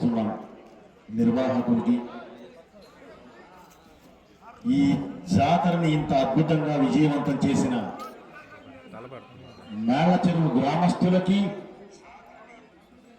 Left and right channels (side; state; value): both; identical; correlation 1.00